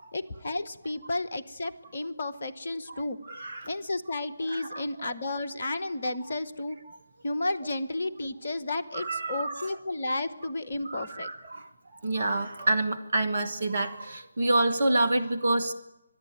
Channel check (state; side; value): inverted; both; correlation -0.89